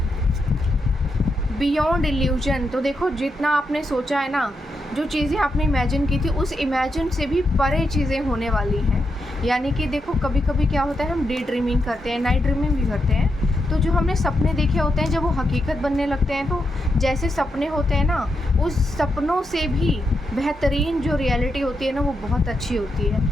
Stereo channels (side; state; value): both; normal; correlation 0.84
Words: बियॉन्ड इल्यूजन, तो देखो जितना आपने सोचा है ना, जो चीज़ें आपने इमेजिन की थी उस इमेजिन से भी परे चीज़ें होने वाली हैं। यानी कि देखो कभी कभी क्या होता है, हम डे ड्रीमिंग करते हैं, नाइट ड्रीमिंग भी करते हैं, तो जो हमने सपने देखे होते हैं जब वो हकीकत बनने लगते हैं, तो जैसे सपने होते हैं ना, उस सपनों से भी बेहतरीन जो रियलिटी होती है ना वो बहुत अच्छी होती